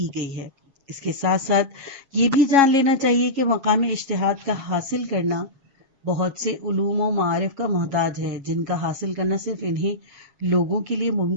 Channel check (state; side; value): late; left; 7.3 ms